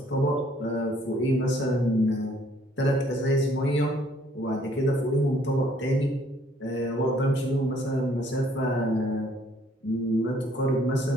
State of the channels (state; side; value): normal; both; correlation 0.63